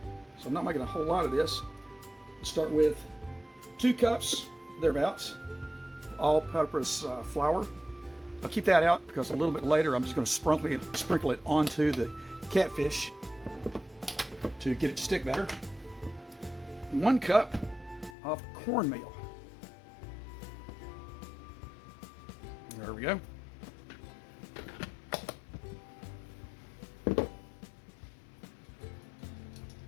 so I'm not making a whole lot of this. Start with 2 cups, thereabouts, all-purpose flour. I'll keep that out because a little bit later I'm just going to sprinkle it onto the catfish to get it to stick better. 1 cup of cornmeal. There we go.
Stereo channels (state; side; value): drops out; right; at 18.1 s